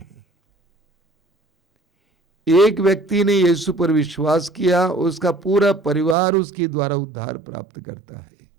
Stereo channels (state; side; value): drops out; left; at 6.2 s